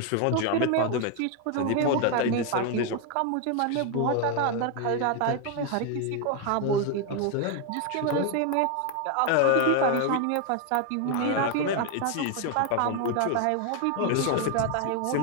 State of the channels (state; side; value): different; both; correlation 0.01